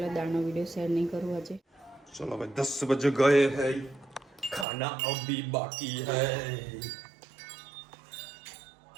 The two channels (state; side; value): drops out; left; at 4.7 s